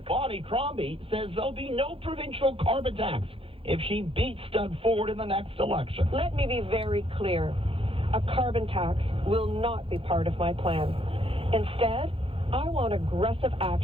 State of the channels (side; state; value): left; late; 0.27 ms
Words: Bonnie Crombie says there'll be no provincial carbon tax if she beats Doug Ford in the next election. Let me be very clear. A carbon tax will not be part of my plan. Instead, I want aggressive